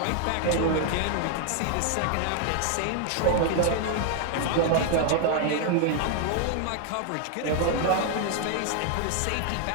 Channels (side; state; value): both; different; correlation 0.00